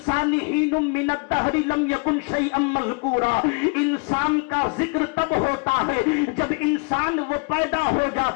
حين من الدهر لم يكن شيئا مذكورا۔ انسان کا ذکر تب ہوتا ہے جب انسان وہ پیدا ہو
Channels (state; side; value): quieter; right; 33.6 dB